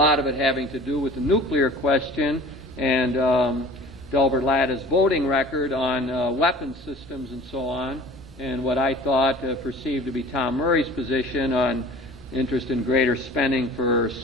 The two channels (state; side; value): normal; both; correlation 0.44